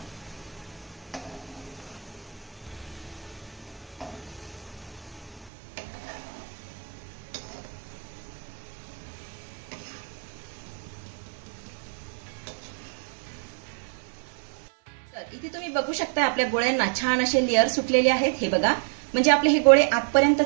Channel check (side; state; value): left; drops out; at 5.5 s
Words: तर इथे तुम्ही बघू शकता आपल्या गोळ्यांना छान असे लेअर सुटलेले आहेत. हे बघा. म्हणजे आपले हे गोळे आतपर्यंत